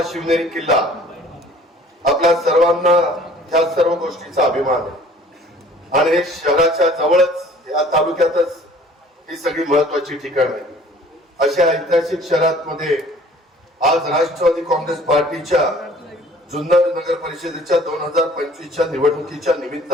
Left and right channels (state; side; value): normal; both; correlation 0.52